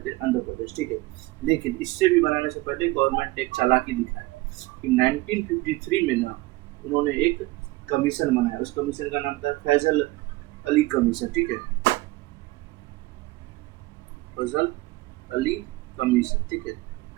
हैं आंध्र प्रदेश, ठीक है। लेकिन इससे भी बनाने से पहले गवर्नमेंट ने एक चालाकी दिखाई कि 1953 में ना उन्होंने एक कमीशन बनाया। उस कमीशन का नाम था फैजल अली कमीशन, ठीक है, फैजल अली कमीशन, ठीक है।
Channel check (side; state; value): left; quieter; 20.4 dB